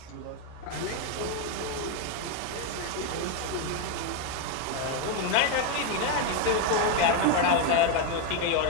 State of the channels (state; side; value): different; both; correlation 0.02